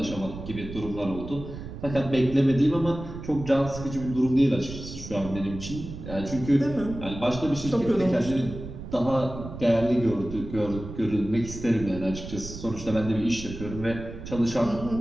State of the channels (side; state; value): right; noise; rumble, 10 dB below the sound